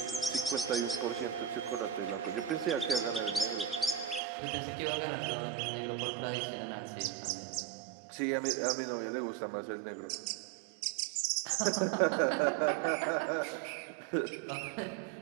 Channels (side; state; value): left; drops out; at 4.2 s